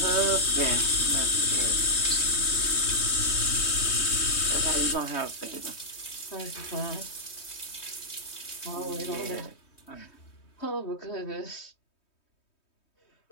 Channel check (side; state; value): right; late; 3.2 ms